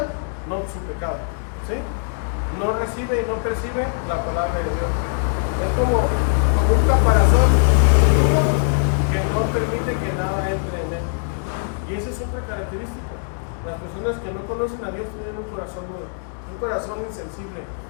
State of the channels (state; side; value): silent; right; digital silence